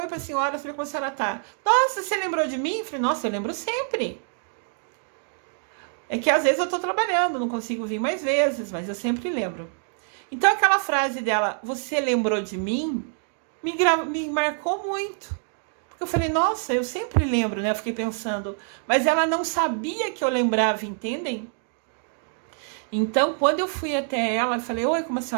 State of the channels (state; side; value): silent; left; 58 dB below the other